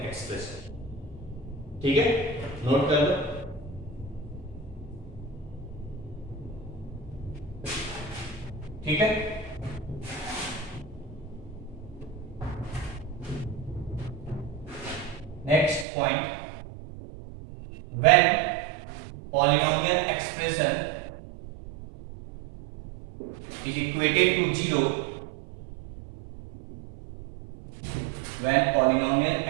एक्सप्रेशन। ठीक है, नोट कर लो। ठीक है, next point, when polynomial expression is equated to 0, when polynomial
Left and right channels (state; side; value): drops out; left; at 15.9 s